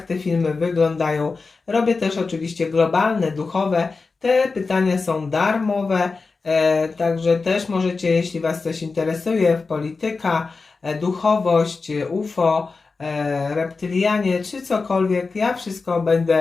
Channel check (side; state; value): right; quieter; 4.2 dB